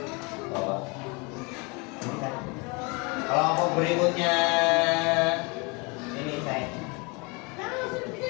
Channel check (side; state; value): right; quieter; 28.8 dB